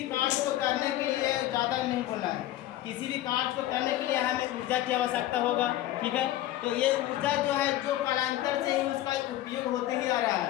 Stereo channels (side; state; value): right; quieter; 14.2 dB